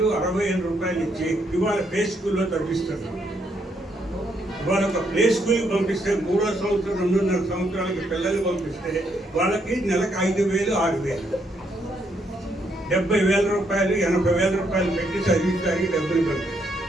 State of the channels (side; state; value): both; normal; correlation 0.74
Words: 60,000 రూపాయలు ఇచ్చి ఇవాళ ప్లే స్కూల్లో చదివిస్తున్నాం. ఇవాళ ఒక ప్లే స్కూల్కి పంపిస్తే 3వ సంవత్సరం 2.5 సంవత్సరాలకి పిల్లలు పంపిస్తే వాళ్ళకి నెలకు 5,000, 6,000, 70,000 రూపాయలు, 80,000 రూపాయలు పెట్టి చదివించడానికి డబ్బులు పంపిస్తారు.